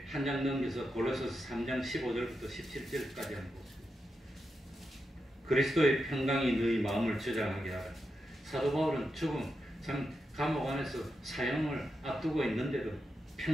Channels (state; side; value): normal; both; correlation 0.87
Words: 한 장 넘겨서 골로새서 3장 15절부터 17절까지 한번 보십니다. 그리스도의 평강이 너희 마음을 저장하게 하라. 사도 바울은 죽음, 참 감옥 안에서 사형을 앞두고 있는데도